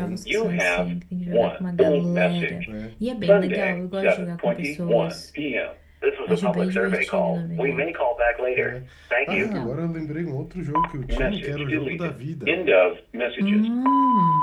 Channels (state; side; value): identical; both; correlation 1.00